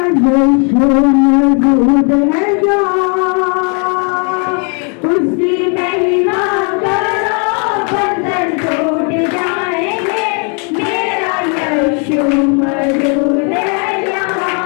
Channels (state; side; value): quieter; right; 38.6 dB